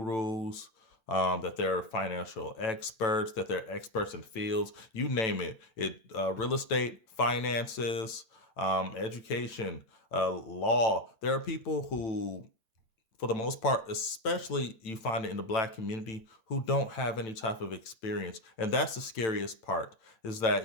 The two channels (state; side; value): late; right; 9.0 ms